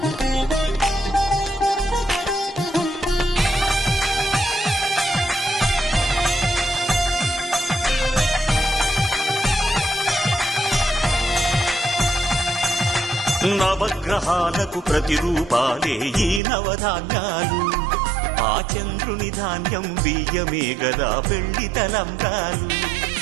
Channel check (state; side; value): drops out; left; at 16.4 s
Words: నవగ్రహాలకు ప్రతిరూపాలే ఈ నవధాన్యాలు, ఆ చంద్రుని ధాన్యం బియ్యమే గదా పెళ్లి తలంబ్రాలు.